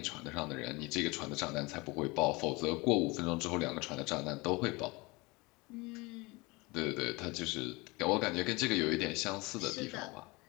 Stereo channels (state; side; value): quieter; right; 24.7 dB